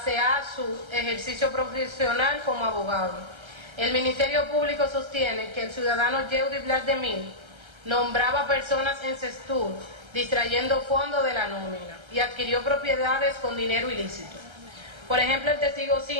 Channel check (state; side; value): late; left; 1.3 ms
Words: a su ejercicio profesional como abogado. El Ministerio Público sostiene que el ciudadano Yeudi Blasdemir nombraba personas en Sectur, distrayendo fondos de la nómina y adquirió propiedades con dinero ilícito. Por ejemplo, el testigo